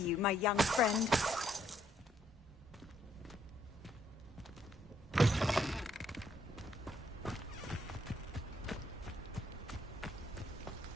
my young friend.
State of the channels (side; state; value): both; normal; correlation 0.71